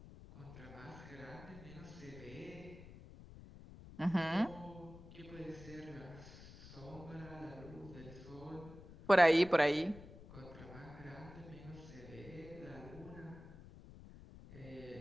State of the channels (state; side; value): noise; left; rumble, 16 dB below the sound